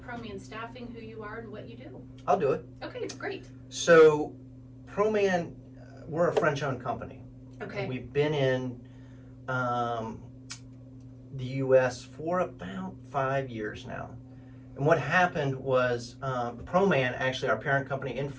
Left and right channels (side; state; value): both; identical; correlation 1.00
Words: Proman Staffing, who you are and what you do. I'll do it. Okay, great. So, Proman, we're a French-owned company. Okay. We've been in the U.S. for about 5 years now. And what happened was Proman, actually our parent company in